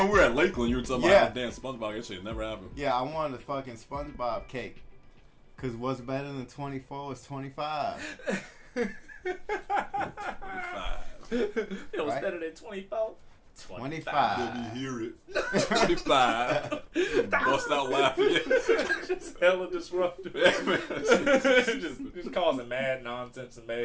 we were at Lakeland, you were talking about damn SpongeBob. That shit never happened. Yeah, I wanted a fucking SpongeBob cake. Because what's better than 24 is 25. 25. It was better than 24. 25. Let me hear it. 25. Bust out laughing. Just hella disruptive. just causing mad nonsense and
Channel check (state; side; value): identical; both; correlation 1.00